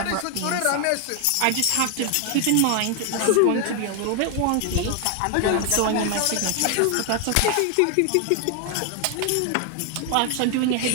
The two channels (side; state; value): both; different; correlation 0.01